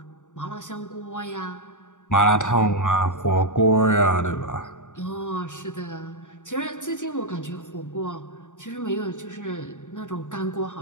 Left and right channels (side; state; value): right; late; 0.86 ms